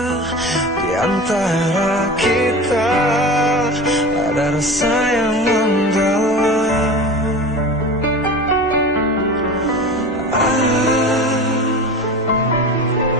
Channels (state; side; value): normal; both; correlation 0.33